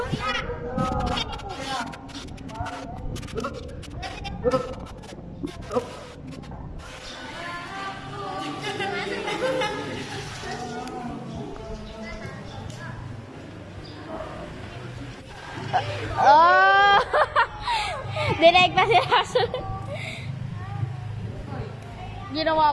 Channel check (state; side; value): identical; both; correlation 1.00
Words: Oh! Direct pa sila.